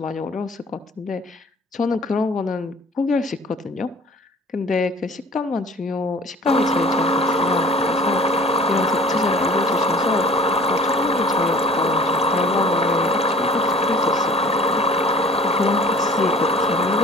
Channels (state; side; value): normal; both; correlation 0.48